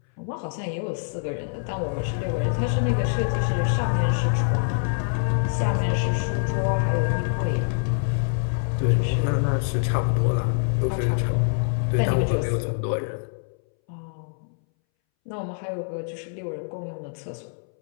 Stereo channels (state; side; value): silent; right; 62 dB below the other